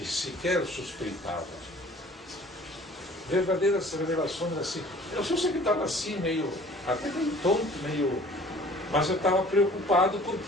sequer suspeitava. Verdadeiras revelações assim. Eu só sei que estava assim, até meio tonto, mas eu estava preocupado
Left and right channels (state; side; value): normal; both; correlation 0.50